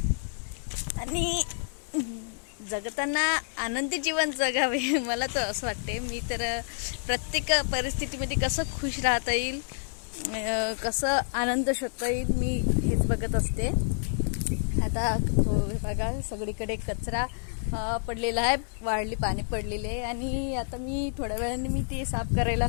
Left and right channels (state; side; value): silent; right; digital silence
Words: आणि जगताना आनंदी जीवन जगावे मला तर असं वाटते. मी तर प्रत्येक परिस्थितीमध्ये कसं खुश राहता येईल, कसं आनंद शोधता येईल, मी हेच बघत असते. आता बघा सगळीकडे कचरा पडलेला आहे, वाढली पाणी पडलेले आणि आता मी थोड्या वेळाने मी ते साफ